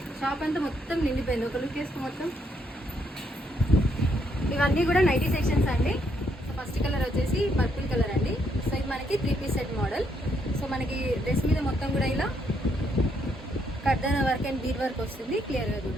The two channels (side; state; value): both; normal; correlation 0.74